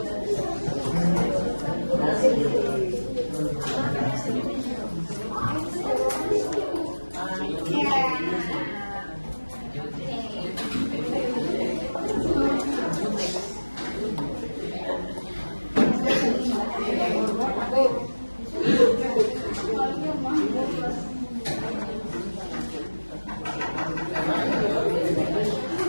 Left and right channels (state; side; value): inverted; both; correlation -1.00